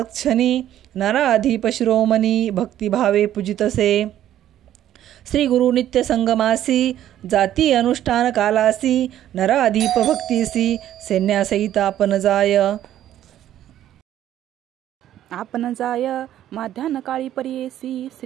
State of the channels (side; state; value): left; quieter; 12.0 dB